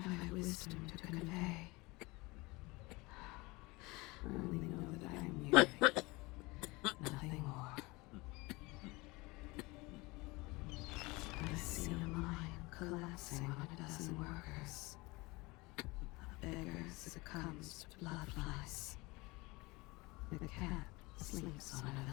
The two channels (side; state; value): right; quieter; 23.6 dB